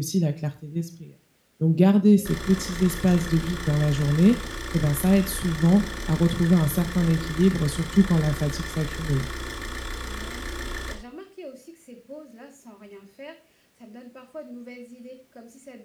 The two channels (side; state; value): both; identical; correlation 1.00